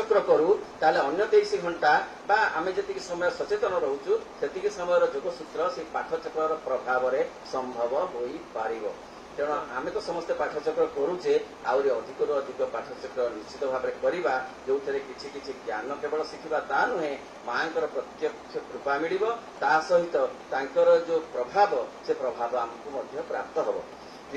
करू ताले अन्य 23 घंटा बा आमे जति समय सचेतन रहउछु सेति समय जोगसूत्र से पाठचक्र प्रभाव में संभव होई पारिबो तेणु आमे तो समस्ते पाठचक्र करूचे आउरी अधिकरू अधिक पाठचक्र निश्चित भाव में करवा जो किछि किछि ज्ञान केवल शिखिबा ता नुहे मांकर प्रत्यक्ष कृपा मिलिबो ता सहित तांकर जो प्रभाव से प्रभाव हमकु मध्य प्राप्त हबो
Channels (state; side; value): identical; both; correlation 1.00